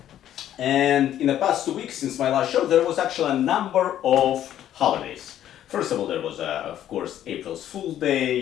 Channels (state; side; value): quieter; right; 11.5 dB